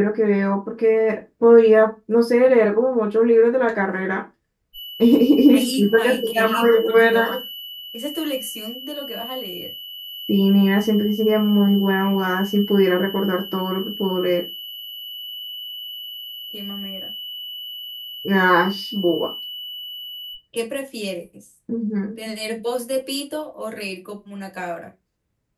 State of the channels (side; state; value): both; identical; correlation 1.00